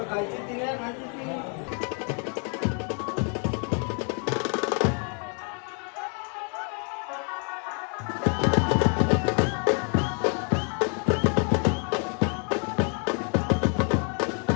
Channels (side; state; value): right; quieter; 40.0 dB